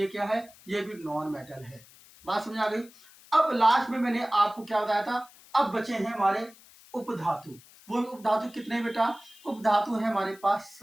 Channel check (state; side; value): noise; left; hiss, 24 dB below the sound